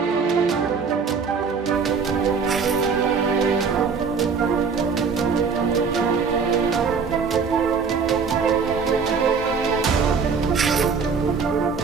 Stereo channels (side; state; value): left; quieter; 5.5 dB